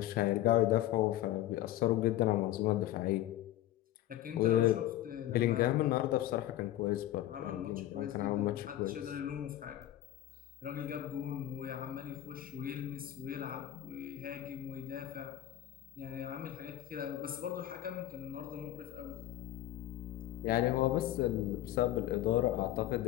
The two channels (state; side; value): quieter; right; 13.6 dB